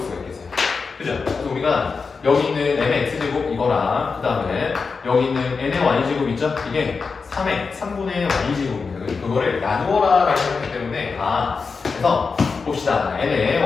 수가 있겠어요. 그죠? 그래서 우리가 여기 있는 n의 x제곱 이거랑 그 다음에 여기 있는 n의 y제곱 있죠? 이게 3분의 y제곱입니다. 그거를 나누어라 라고 했기 때문에 그래서 봅시다. n의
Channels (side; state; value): right; quieter; 4.9 dB